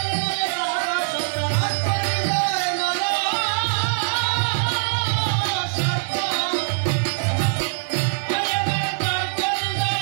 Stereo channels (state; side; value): silent; left; digital silence